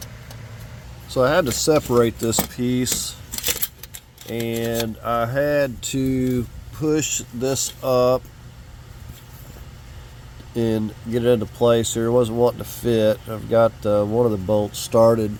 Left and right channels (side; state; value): both; identical; correlation 1.00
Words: So I had to separate this piece, and I had to push this up and get it into place here. It wasn't wanting to fit. I've got one of the bolts started